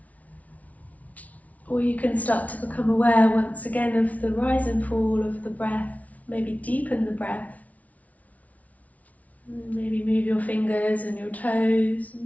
Or you can start to become aware once again of the rise and fall of the breath, maybe deepen the breath. And maybe move your fingers and your toes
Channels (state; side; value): late; right; 0.070 ms